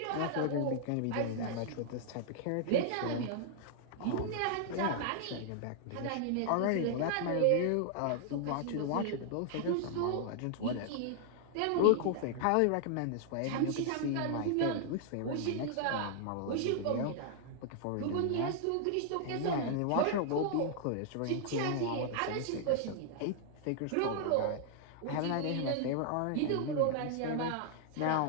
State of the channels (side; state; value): both; different; correlation -0.01